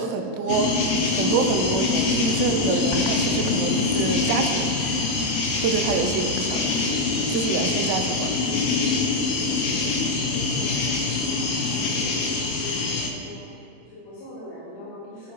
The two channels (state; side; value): late; right; 26 ms